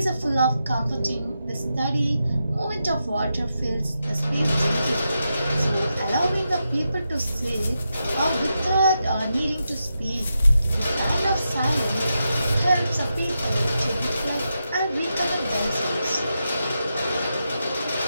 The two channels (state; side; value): inverted; both; correlation -0.87